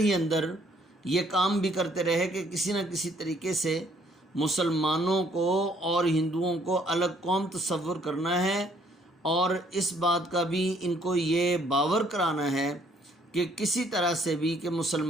اندر یہ کام بھی کرتے رہے کہ کسی نہ کسی طریقے سے مسلمانوں کو اور ہندوؤں کو الگ قوم تصور کرنا ہے، اور اس بات کا بھی ان کو یہ باور کرانا ہے کہ کسی طرح سے بھی کہ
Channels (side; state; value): both; normal; correlation 0.64